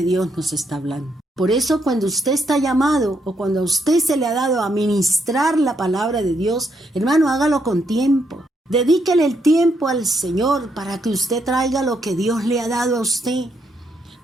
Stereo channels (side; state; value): both; normal; correlation 0.77